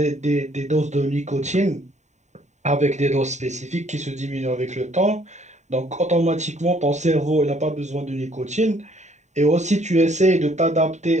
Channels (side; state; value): left; late; 0.34 ms